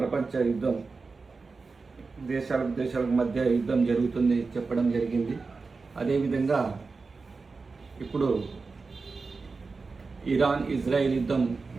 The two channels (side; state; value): left; quieter; 4.3 dB